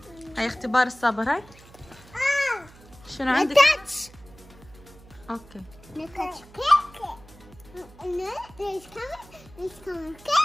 هاي اختبار الصبر. هاي شنو عندك؟ اوكي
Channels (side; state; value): right; noise; hum, 23 dB below the sound